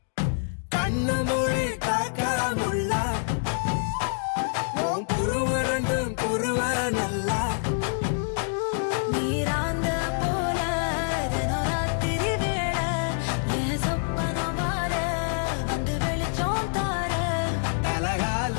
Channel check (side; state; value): right; silent; digital silence